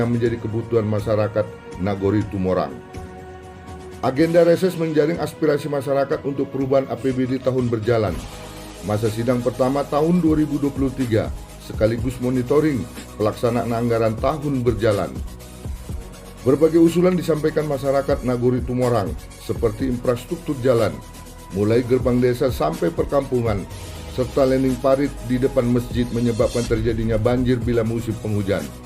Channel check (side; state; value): both; identical; correlation 1.00